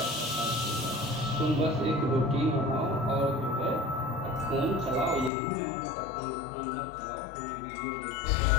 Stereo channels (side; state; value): right; drops out; at 5.3 s